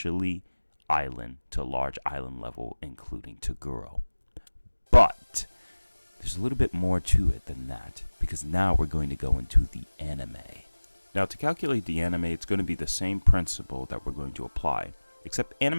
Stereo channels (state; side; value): inverted; both; correlation -1.00